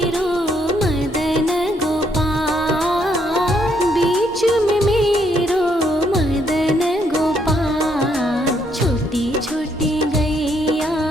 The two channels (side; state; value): both; normal; correlation 0.72